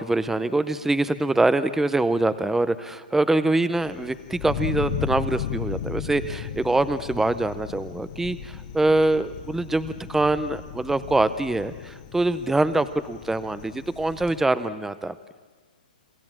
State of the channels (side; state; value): both; normal; correlation 0.86